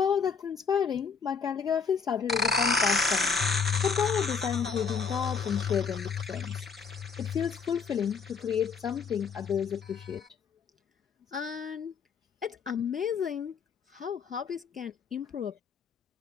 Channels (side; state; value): right; quieter; 5.7 dB